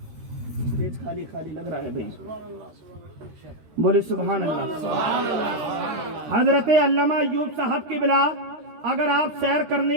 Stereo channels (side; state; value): left; late; 13 ms